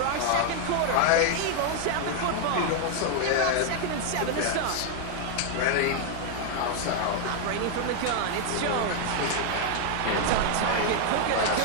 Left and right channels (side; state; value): both; different; correlation 0.00